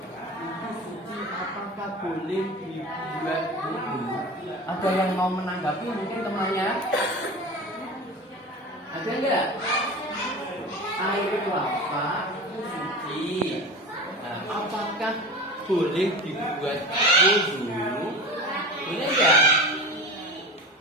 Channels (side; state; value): both; normal; correlation 0.31